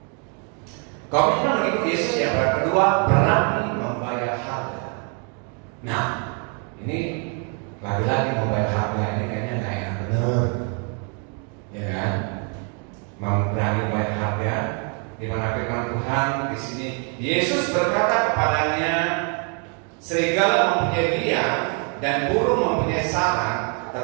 Komitmen mengikuti Yesus yang kedua, berani membayar harga. Nah, ini lagi-lagi membayar harga ini kayaknya nggak enak bener, ya kan? Berani membayar harga. Di mana firman Tuhan di sini, Yesus berkata kepadanya, serigala mempunyai liang dan burung mempunyai sarang,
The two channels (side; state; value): left; quieter; 39.0 dB